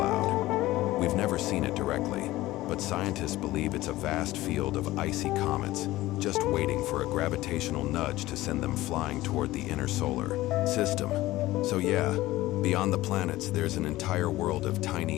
We've never seen it directly, but scientists believe it's a vast field of icy comets, just waiting for a gravitational nudge to send them flying toward the inner solar system. So yeah, beyond the planets, there's an entire world of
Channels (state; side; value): quieter; right; 17.2 dB